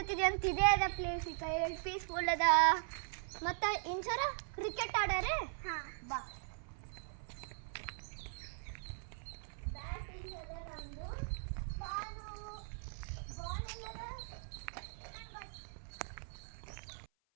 ಅಂತ. ಇದೇ ಅದ ಪ್ಲೇಸ್. ಈಗ ಪೀಸ್ಫುಲ್ ಅದ. ಮತ್ತು ಇನ್ಸರ ಕ್ರಿಕೆಟ್ ಆಡಾರೆ. ಬಾ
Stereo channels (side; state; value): left; silent; 51 dB below the other